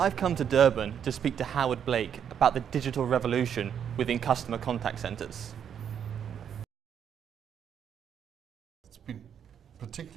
come to Durban to speak to Howard Blake about the digital revolution within customer contact centres. It's been a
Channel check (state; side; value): quieter; left; 8.4 dB